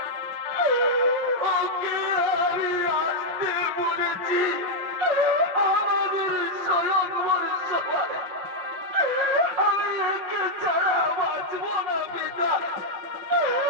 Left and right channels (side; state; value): left; late; 5.5 ms